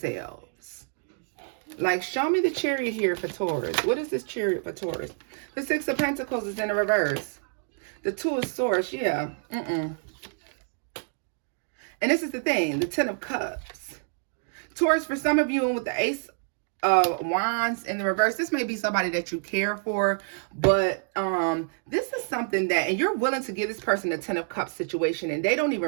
Like, show me the Chariot here for Taurus. What is this Chariot for Taurus? The Six of Pentacles is in the reverse. The Two of Swords, yeah. And this is the thing, the Ten of Cups. Taurus, for some of you, and with the Ace of Wands in the reverse, this may be somebody that you care for, but this is something that, and you're willing to give this person a Ten of Cups situation, and they don't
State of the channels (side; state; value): left; silent; 60 dB below the other